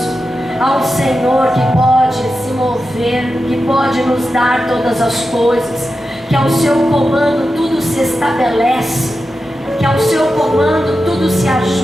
a um Senhor que pode se mover, que pode nos dar todas as coisas, que ao seu comando tudo se estabelece, que ao seu comando tudo se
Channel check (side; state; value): both; normal; correlation 0.91